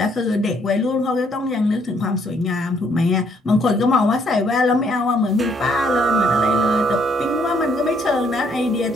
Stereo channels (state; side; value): normal; both; correlation 0.68